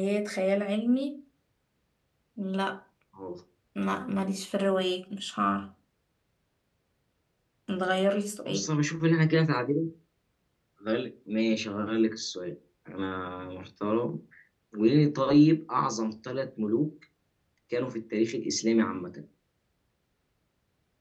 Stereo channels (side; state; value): both; identical; correlation 1.00